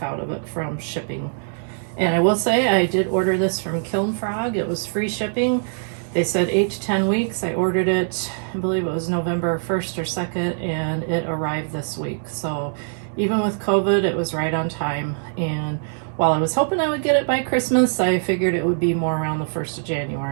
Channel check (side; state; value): left; silent; digital silence